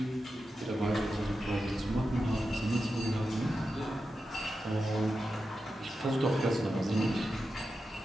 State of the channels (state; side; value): normal; both; correlation 0.90